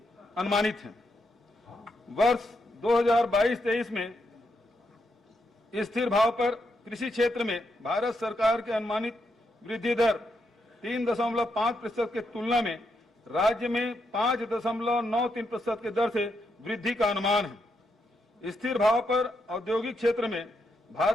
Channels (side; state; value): both; normal; correlation 0.81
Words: अनुमानित है। वर्ष 2022-23 में स्थिर भाव पर कृषि क्षेत्र में भारत सरकार के अनुमानित वृद्धि दर 3.5% के तुलना में राज्य में 5.93% के दर से वृद्धि का अनुमान है। स्थिर भाव पर औद्योगिक क्षेत्र में